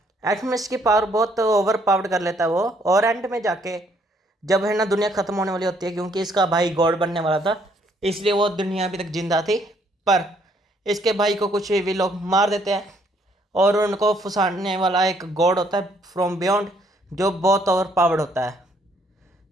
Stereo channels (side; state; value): both; normal; correlation 0.67